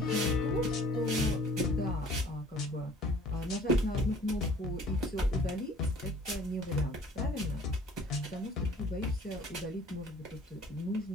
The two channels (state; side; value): normal; both; correlation 0.52